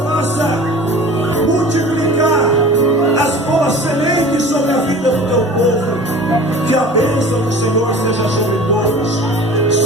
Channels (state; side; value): normal; both; correlation 0.42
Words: faça multiplicar as boas sementes sobre a vida do teu povo. Que a bênção do Senhor seja sobre todos.